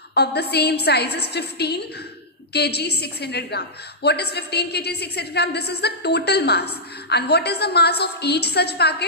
of the same size is 15 kg 600 gram. What is 15 kg 600 gram? This is the total mass. And what is the mass of each such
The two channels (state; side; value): normal; both; correlation -0.11